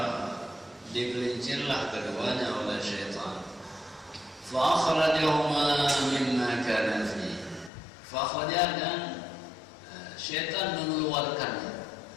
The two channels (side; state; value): right; drops out; at 7.7 s